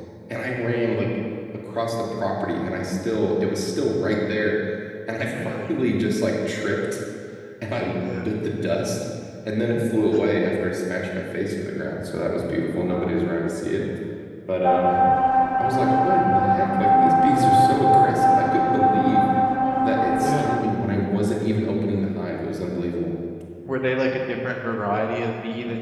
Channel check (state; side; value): identical; both; correlation 1.00